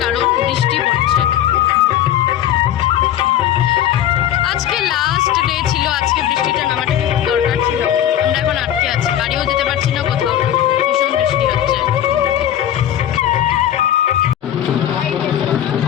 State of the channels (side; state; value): right; quieter; 11.2 dB